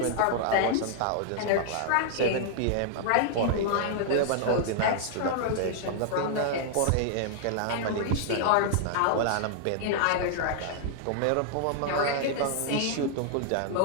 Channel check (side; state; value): both; different; correlation -0.01